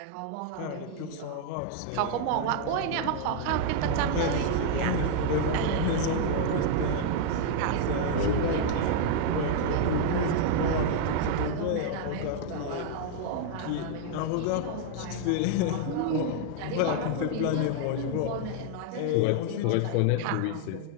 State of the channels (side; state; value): both; different; correlation 0.00